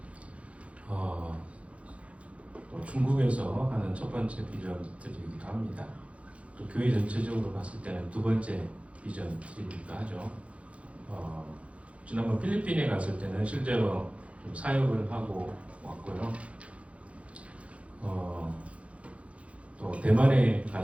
중국에서 하는 첫 번째 비전 트립이기도 합니다. 또 교회 전체적으로 봤을 때는 두 번째 비전 트립이기도 하죠. 지난번 필리핀에 갔을 때는 실제로 좀 사역을 하고 왔고요. 또 대만에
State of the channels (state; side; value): late; left; 0.063 ms